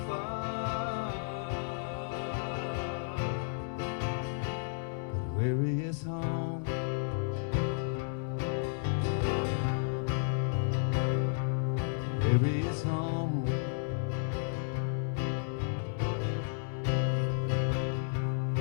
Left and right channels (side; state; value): right; silent; 56 dB below the other